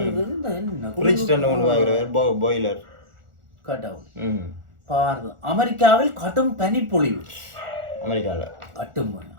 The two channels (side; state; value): left; late; 1.4 ms